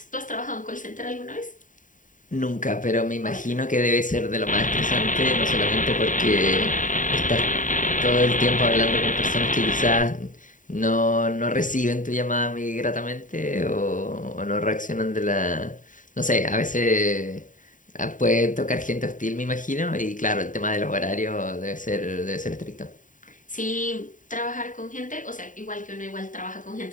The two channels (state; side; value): late; right; 0.38 ms